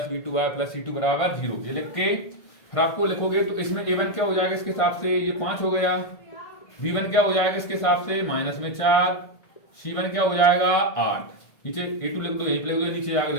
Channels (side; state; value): right; late; 1.5 ms